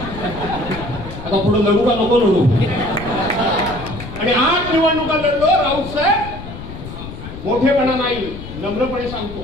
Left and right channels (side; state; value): left; noise; rumble, 11 dB below the sound